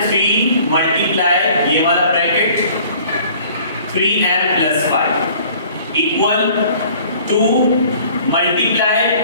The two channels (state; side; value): inverted; both; correlation -0.52